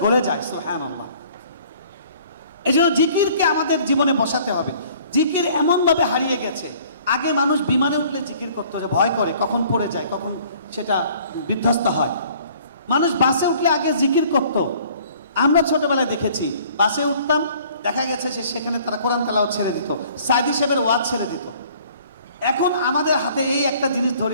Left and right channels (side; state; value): both; inverted; correlation -0.55